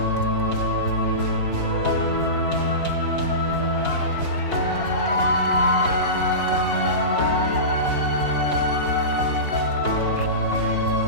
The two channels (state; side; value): late; right; 4.4 ms